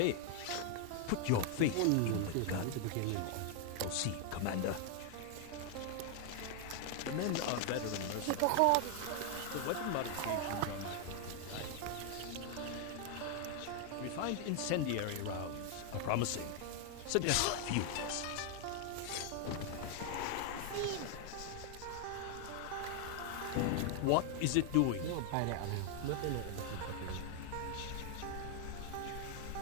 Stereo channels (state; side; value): different; both; correlation 0.00